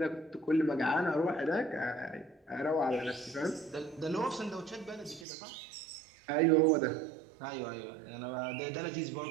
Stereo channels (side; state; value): left; drops out; at 5.2 s